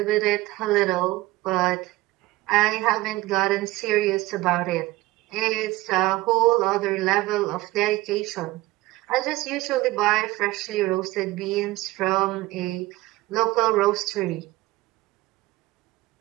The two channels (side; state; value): left; quieter; 18.9 dB